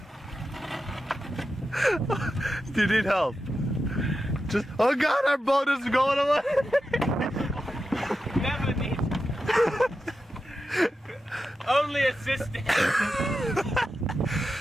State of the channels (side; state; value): both; normal; correlation 0.90